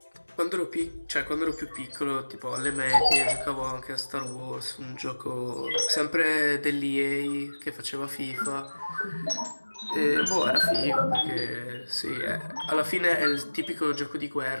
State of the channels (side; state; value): both; inverted; correlation -1.00